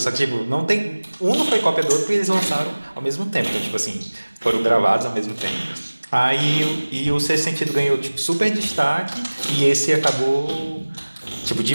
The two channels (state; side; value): inverted; both; correlation -1.00